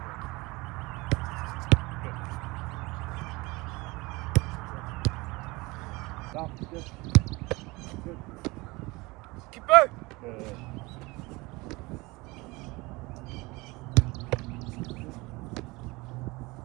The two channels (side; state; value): left; quieter; 23.3 dB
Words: Good. Stop. Good. Good. Keep it. Good.